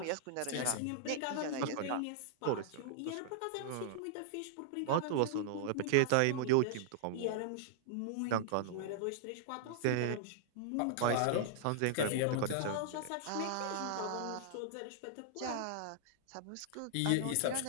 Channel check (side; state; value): both; different; correlation -0.01